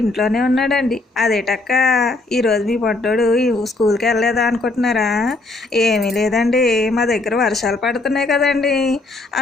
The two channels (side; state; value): right; quieter; 3.1 dB